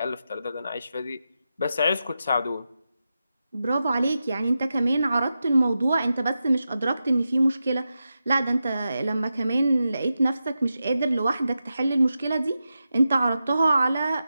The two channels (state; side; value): inverted; both; correlation -0.90